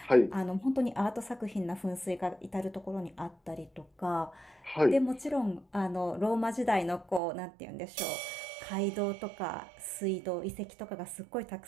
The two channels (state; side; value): drops out; left; at 7.2 s